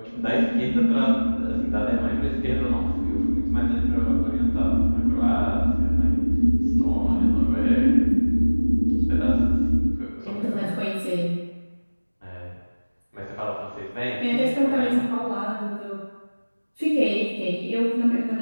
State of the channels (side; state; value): both; inverted; correlation -1.00